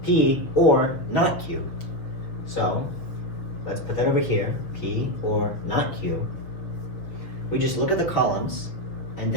P or not Q. So let's put that over here, P or not Q. We just look at the columns and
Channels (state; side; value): late; right; 6.4 ms